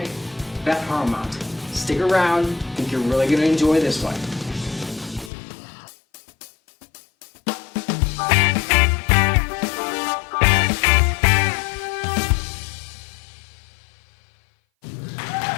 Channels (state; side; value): drops out; right; at 5.3 s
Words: Beth Harmount. Stick around, I think you're really going to enjoy this one.